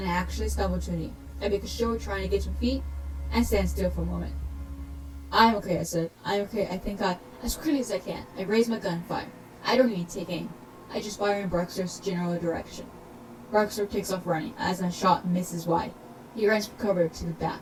I actually stumble to a knee. I make a show of trying to get to my feet, and stand still for a moment. I'm okay, I said. I'm okay. I think as quickly as I can. I raise my gun and fire. I don't even take aim. I just fire in Barstow's general direction. Barstow takes off running, as my shot misses wide. He runs for cover to the back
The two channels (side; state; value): both; identical; correlation 1.00